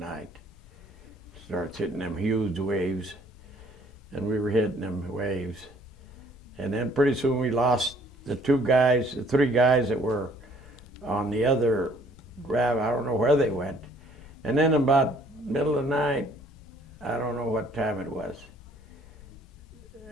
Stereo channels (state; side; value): noise; left; rumble, 23 dB below the sound